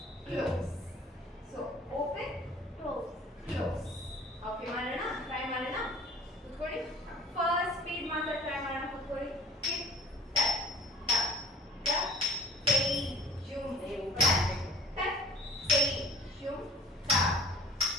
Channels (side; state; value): both; normal; correlation 0.45